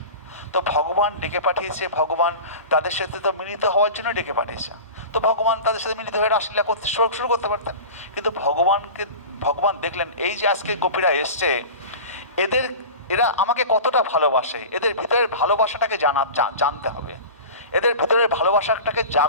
তো ভগবান ডেকে পাঠিয়েছে, ভগবান তাদের সাথে তো মিলিত হওয়ার জন্য ডেকে পাঠিয়েছে। তো ভগবান তাদের সাথে মিলিত হয়ে রাসলীলা করতে শুরু করতে পারতেন, কিন্তু ভগবান দেখলেন এই যে আজকে গোপীরা এসছে, এরা আমাকে কতটা ভালোবাসে, এদের ভিতরের ভালোবাসাটাকে জানতে হবে, এদের ভিতরের ভালোবাসাটাকে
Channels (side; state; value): both; inverted; correlation -0.33